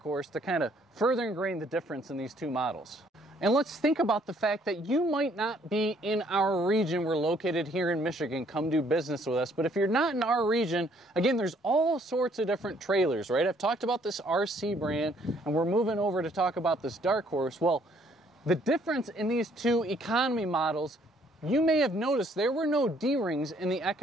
to kind of further ingrain the difference in these two models. And let's think about the fact that you might not be in our region. We're located here in Michigan. Come do business with us. But if you're not in our region, again, there's all sorts of different trailers, right? I've talked about this RC brand, and we're moving over to talk about this Darkhorse. Well, the difference in these two economy models, you may have noticed there were no D-rings in the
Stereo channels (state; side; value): normal; both; correlation 0.64